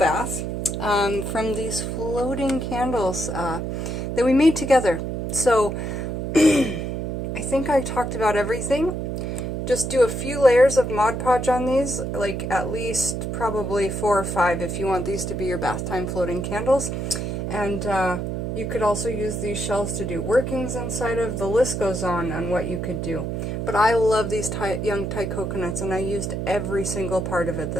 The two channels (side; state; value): right; noise; hum, 3 dB below the sound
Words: from these floating candles that we made together. So, I think I talked about everything. Just do a few layers of Mod Podge on these, like at least probably 4 or 5 if you want these to be your bath time floating candles. And you could also use these shells to do workings inside of. The list goes on what you could do. But I love these young Thai coconuts, and I used every single part of it